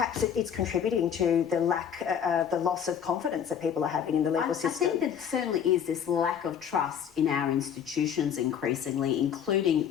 it's contributing to the the loss of confidence that people are having in the legal system. I think there certainly is this lack of trust in our institutions increasingly,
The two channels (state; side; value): quieter; right; 8.4 dB